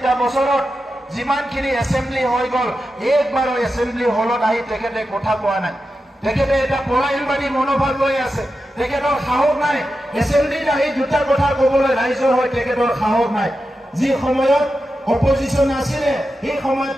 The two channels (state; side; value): normal; both; correlation 0.90